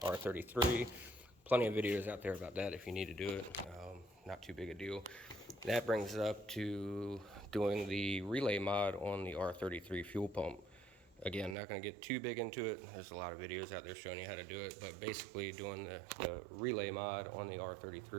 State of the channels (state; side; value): drops out; left; at 11.6 s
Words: R33. Plenty of videos out there about that if you need to do it. Not too big a deal. That brings us up to doing the relay mod on the R33 fuel pump. Again, not going to get too big into it. There's a lot of videos out there showing you how to do it, but basically doing the relay mod on the